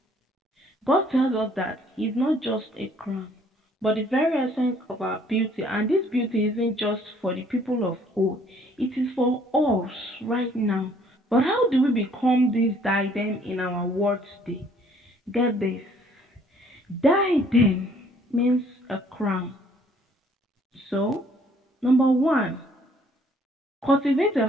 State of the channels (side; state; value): both; normal; correlation 0.60